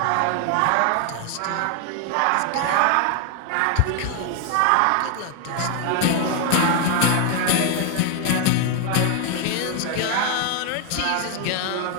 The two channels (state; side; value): different; both; correlation 0.00